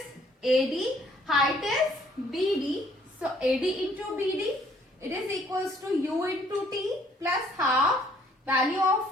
AD, height is BD. So AD into BD, it is equals to U into T plus half. Value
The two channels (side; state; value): both; normal; correlation 0.62